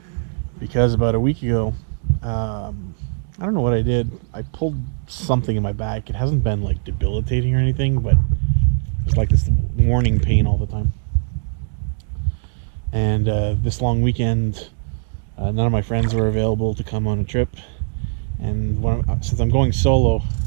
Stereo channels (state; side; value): silent; left; digital silence